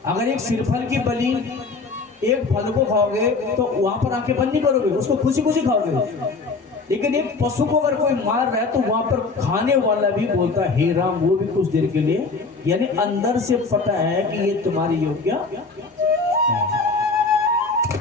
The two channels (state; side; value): quieter; right; 4.1 dB